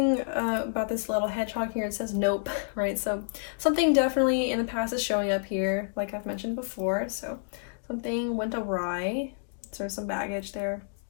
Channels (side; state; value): right; silent; digital silence